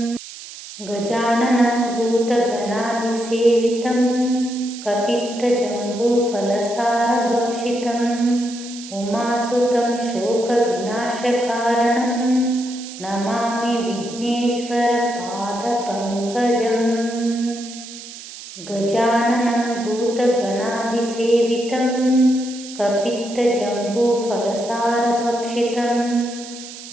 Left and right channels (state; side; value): noise; right; hiss, 14 dB below the sound